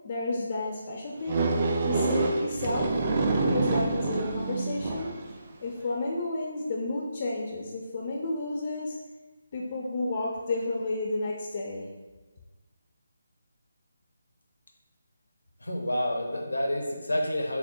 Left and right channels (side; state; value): both; inverted; correlation -0.80